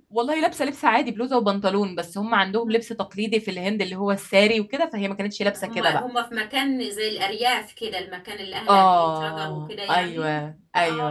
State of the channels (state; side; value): identical; both; correlation 1.00